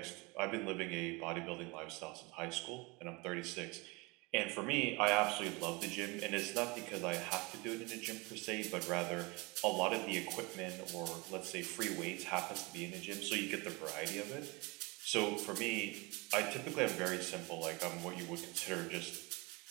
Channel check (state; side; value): quieter; left; 26.3 dB